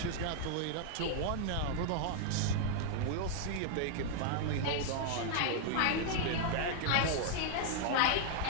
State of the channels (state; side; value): different; both; correlation 0.00